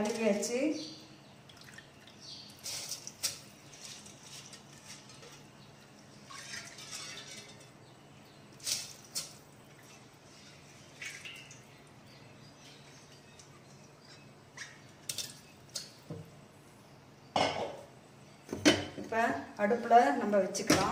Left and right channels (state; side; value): identical; both; correlation 1.00